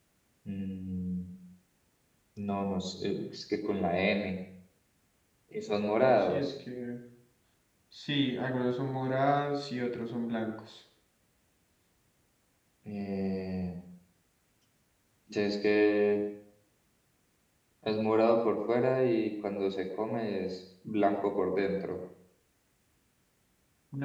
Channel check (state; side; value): identical; both; correlation 1.00